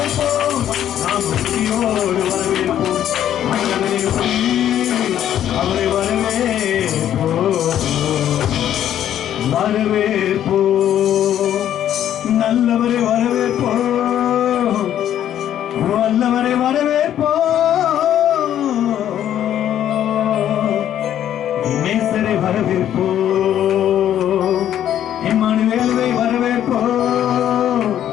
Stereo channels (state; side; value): quieter; right; 10.9 dB